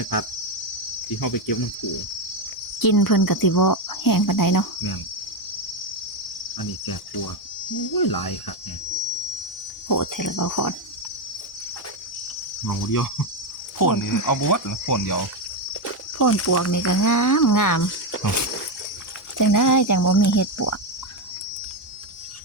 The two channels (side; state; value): both; normal; correlation 0.08